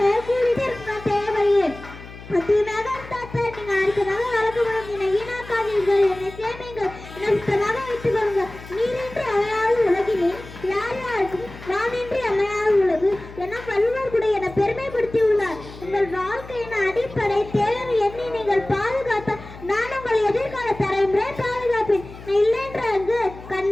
தேவையே அதிகமாக நீங்க அடுத்ததாக வளர்க்கப்படும். என்னை வீணாக்காதீர்கள், என்னை சேமிங்கள், என்னை சுத்தமாக வைத்துக் கொள்ளுங்கள். நீரின்றி அவையால் உலகினேன் யார் யாருக்கும் நான் இன்றி அமையாத உலகு என வள்ளுவர் கூட என பெருமைப்படுத்தி உள்ளார். உங்கள் வாழ்க்கையின் அடிப்படை தேவை எண்ணி நீங்கள் பாதுகாத்த நான் உங்கள் எதிர்கால தலைமுறை பாதுகாப்பேன். இல்லைன்ற அங்கு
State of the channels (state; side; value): noise; left; hum, 16 dB below the sound